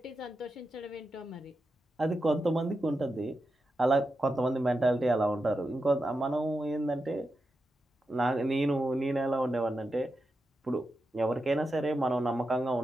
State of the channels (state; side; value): normal; both; correlation 0.89